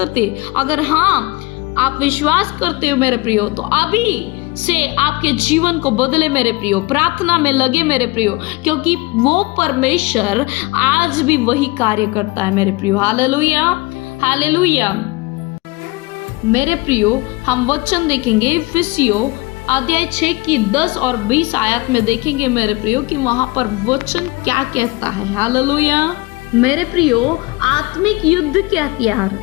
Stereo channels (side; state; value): right; quieter; 23.0 dB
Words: अगर हाँ आप विश्वास करते हो मेरे प्रियो, तो अभी से आपके जीवन को बदले मेरे प्रियो, प्रार्थना में लगे मेरे प्रियो, क्योंकि वो परमेश्वर आज भी वही कार्य करता है मेरे प्रियो। Hallelujah, hallelujah. मेरे प्रियो, हम वचन देखेंगे इफिसियों अध्याय 6 की 10 और 20 आयत में देखेंगे मेरे प्रियो कि वहां पर वचन क्या कहता है। हालेलुया। मेरे प्रियो, आत्मिक युद्ध के हथियार